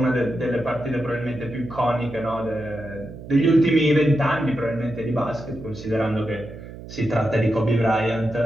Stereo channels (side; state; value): right; noise; hum, 14 dB below the sound